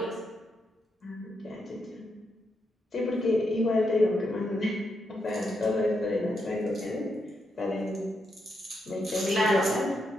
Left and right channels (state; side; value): normal; both; correlation 0.82